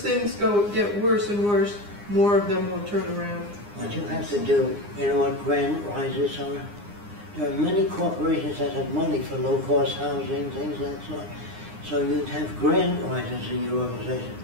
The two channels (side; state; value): left; late; 9.8 ms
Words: things get worse and worse, more of them will turn around. What you have to do, you know what grant rises are? There are many corporations that have money for low-cost housing, things like that. So you'd have grant writers in your organization